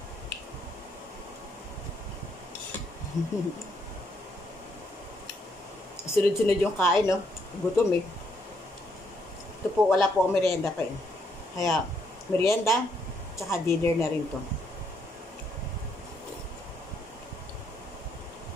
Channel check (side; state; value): both; normal; correlation 0.73